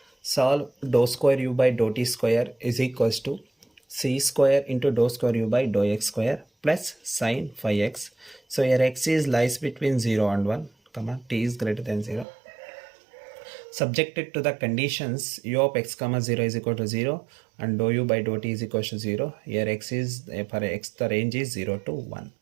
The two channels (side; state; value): left; drops out; at 12.2 s